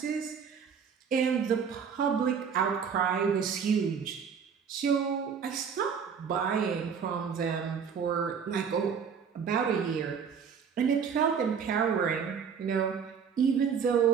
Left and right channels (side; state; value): left; quieter; 6.8 dB